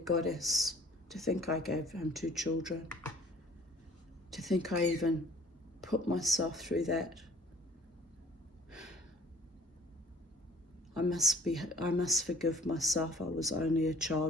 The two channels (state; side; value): normal; both; correlation 0.52